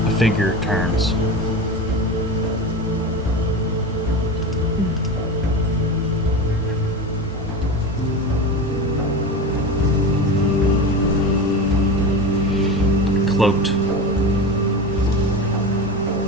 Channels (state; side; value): normal; both; correlation 0.25